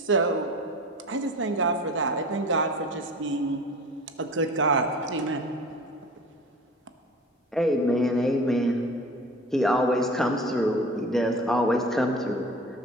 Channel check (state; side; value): normal; both; correlation 0.39